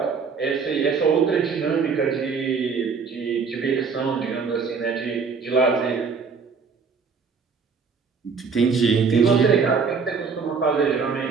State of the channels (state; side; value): quieter; left; 5.4 dB